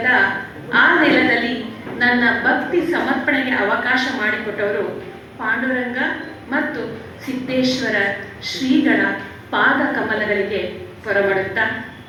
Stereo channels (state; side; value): identical; both; correlation 1.00